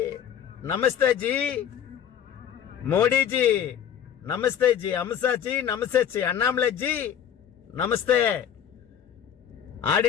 நமஸ்தே ஜி, மோடிஜி நமஸ்தே ஜி, அமித்ஷா ஜி நமஸ்தே ஜி, அண்ணாமலை ஜி நமஸ்தே,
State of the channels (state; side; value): quieter; right; 9.2 dB